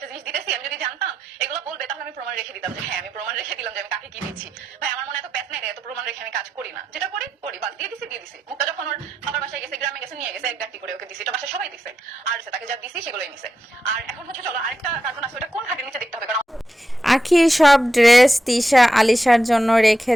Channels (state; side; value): normal; both; correlation 0.87